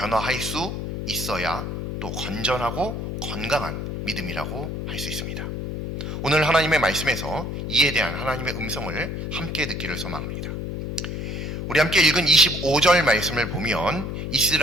수 있어야 또 건전하고 건강한 믿음이라고 할 수 있습니다. 오늘 하나님의 말씀에서 이에 대한 하나님의 음성을 함께 듣기를 소망합니다. 우리 함께 읽은 25절 말씀을 보면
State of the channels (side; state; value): left; noise; hum, 4 dB below the sound